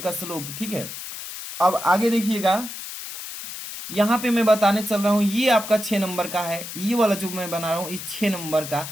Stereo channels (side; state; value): left; noise; hiss, 9 dB below the sound